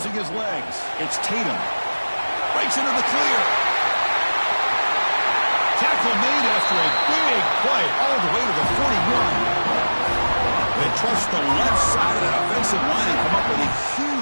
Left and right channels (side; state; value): both; inverted; correlation -1.00